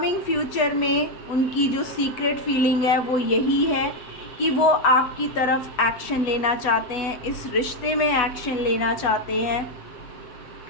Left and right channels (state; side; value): late; right; 8.1 ms